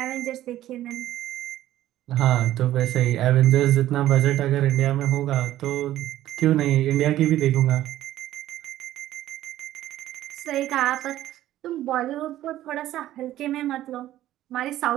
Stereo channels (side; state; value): left; quieter; 13.7 dB